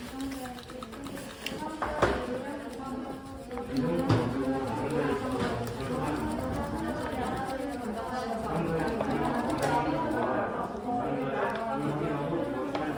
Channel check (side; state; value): both; identical; correlation 1.00